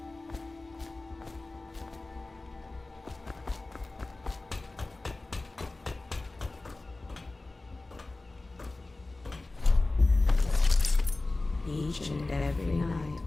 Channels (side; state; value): right; quieter; 3.1 dB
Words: Each and every night,